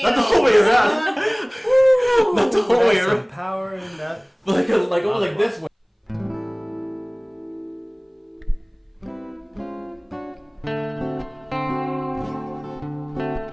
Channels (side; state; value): both; identical; correlation 1.00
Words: Not the whole way around. Not the whole way around. Some power in that. But like this way.